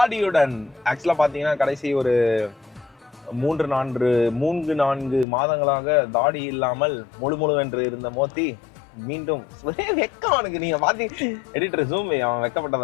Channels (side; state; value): right; drops out; at 5.2 s